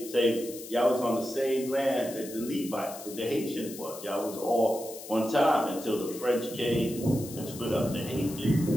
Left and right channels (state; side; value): noise; left; hiss, 13 dB below the sound